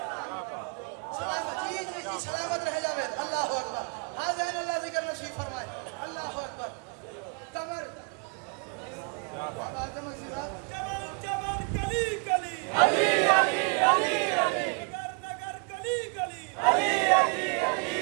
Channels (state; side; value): quieter; left; 35.8 dB